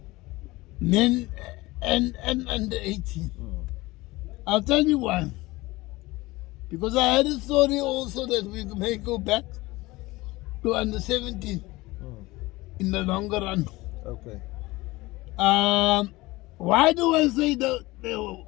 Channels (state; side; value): quieter; right; 20.5 dB